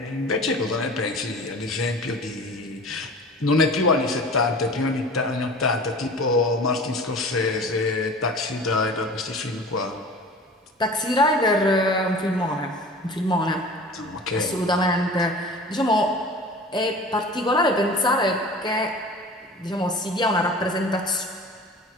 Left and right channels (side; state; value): both; normal; correlation 0.40